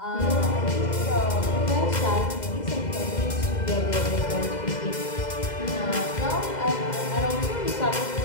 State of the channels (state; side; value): late; right; 2.0 ms